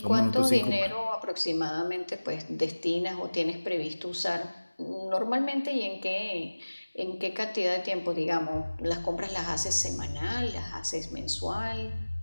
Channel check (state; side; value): inverted; both; correlation -1.00